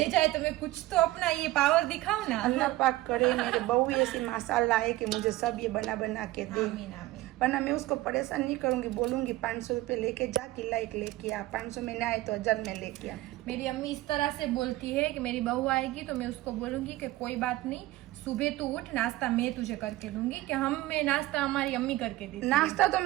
जाए तो मैं कुछ तो अपना ये पावर दिखाऊं ना। अल्लाह पाक करे मेरे बहू ऐसी माशाल्लाह है कि मुझे सब ये बना के दे, आमीन आमीन। वरना मैं उसको परेशान नहीं करूंगी, बोलूंगी 500 रुपये लेके जा, किला एक लेके आ, 500 में ना आए तो 1000 में लेके आ। मेरी अम्मी इस तरह से बोलती है कि मेरी बहू आएगी तो मैं उसको बोलूंगी कि कोई बात नहीं, सुबह तू उठ, नाश्ता मैं तुझे करके दूंगी। कि मैं नाश्ता हमारी अम्मी करके देती है। नाश्ता तो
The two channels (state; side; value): quieter; left; 17.4 dB